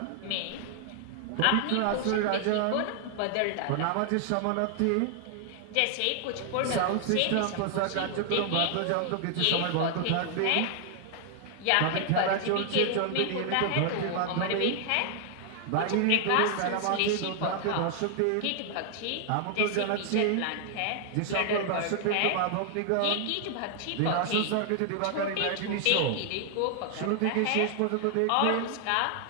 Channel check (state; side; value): different; both; correlation 0.00